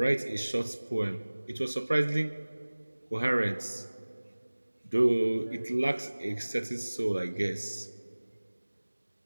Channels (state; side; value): inverted; both; correlation -1.00